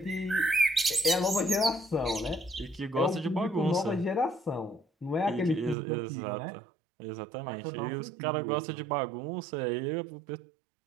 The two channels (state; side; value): drops out; left; at 5.8 s